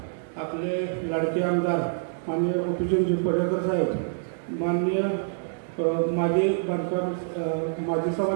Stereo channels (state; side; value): silent; left; digital silence